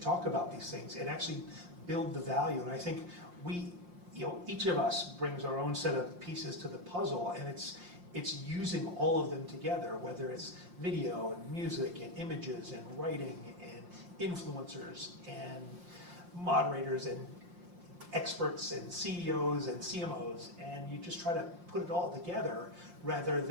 talk about these things and actually build the value. And I think each of us brings our own set of pieces to the puzzle, and it's using all of them together, whether it's video and music and images and writing and influencers and moderators and experts and CEOs and CMOs, and you just try to put it all together rather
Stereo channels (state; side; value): late; left; 5.7 ms